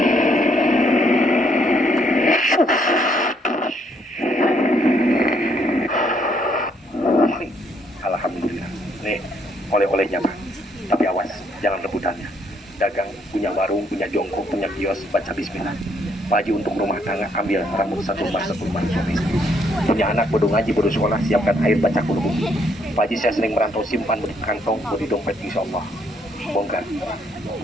Alhamdulillah. Nih, oleh-olehnya Pak. Tapi awas, jangan rebutannya. Dagang, punya warung, punya jongkok, punya kios, baca bismillah. Pak Haji untuk rumah tangga, ambil rambut satu lembar suami istri. Punya anak, bodoh ngaji, bodoh sekolah, siapkan air, baca Qul. Pak Haji saya sering merantau, simpan di kantong, di dompet, insya Allah. Bongkar.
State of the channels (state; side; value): normal; both; correlation 0.70